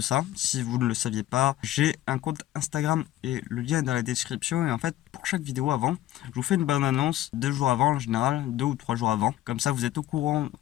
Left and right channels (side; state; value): right; quieter; 14.1 dB